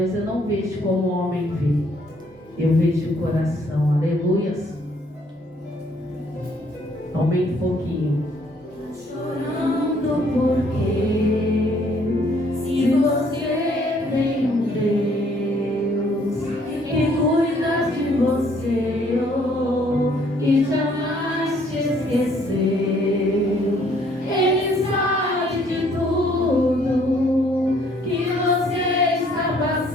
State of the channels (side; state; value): both; normal; correlation 0.64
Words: Eu não vejo como o homem vê, eu vejo o coração. Aleluias. Aumente um pouquinho. Chorando porque se você tem um Deus que cuida de você, oh, e jamais te esqueceu, Ele sabe de tudo que você está